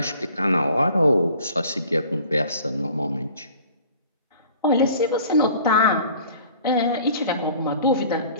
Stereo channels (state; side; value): inverted; both; correlation -0.50